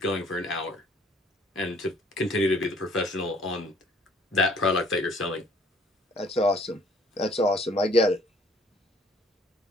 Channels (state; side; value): normal; both; correlation 0.58